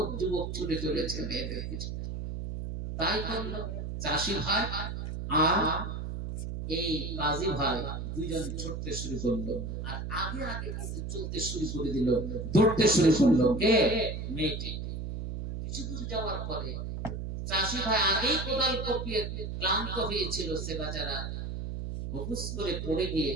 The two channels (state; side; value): noise; right; hum, 5 dB below the sound